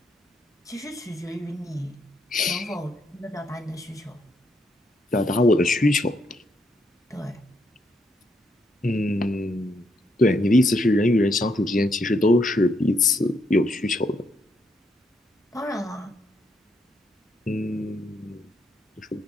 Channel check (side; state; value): both; normal; correlation 0.76